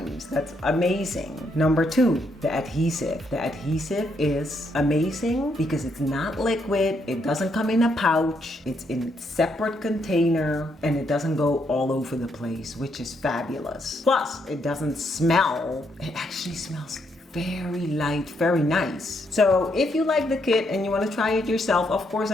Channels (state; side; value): normal; both; correlation 0.76